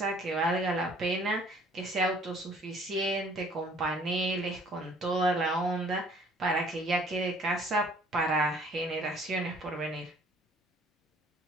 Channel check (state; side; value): normal; both; correlation 0.56